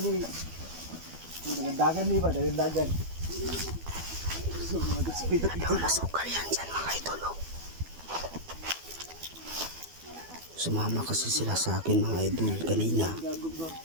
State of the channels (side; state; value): left; late; 12 ms